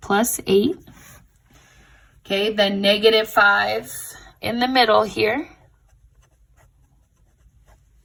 8. Okay, then -5 in the middle here.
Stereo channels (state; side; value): identical; both; correlation 1.00